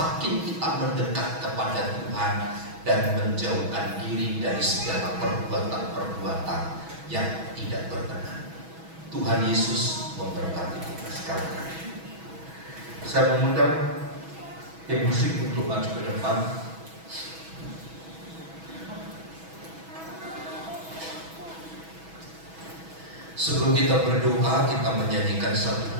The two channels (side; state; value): left; late; 6.2 ms